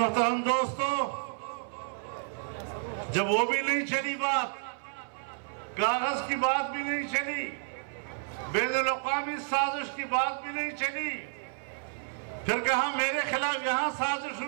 دوستو، جب وہ بھی نہیں چلی بات، کاغذ کی بات بھی نہیں چلی، بین الاقوامی سازش کی بات بھی نہیں چلی، پھر کہا میرے خلاف یہاں سازش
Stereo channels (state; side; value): silent; left; 57 dB below the other